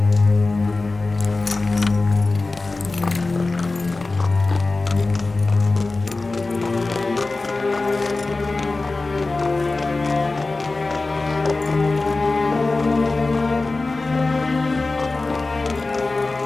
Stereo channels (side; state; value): right; quieter; 3.4 dB